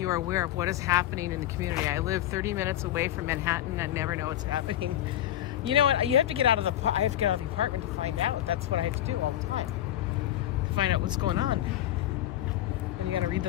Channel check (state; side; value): quieter; right; 12.7 dB